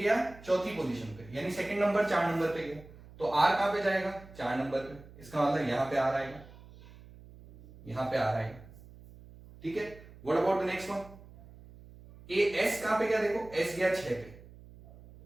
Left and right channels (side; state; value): right; noise; hum, 20 dB below the sound